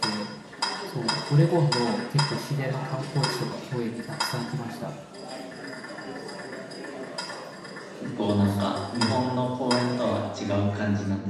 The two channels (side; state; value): both; identical; correlation 1.00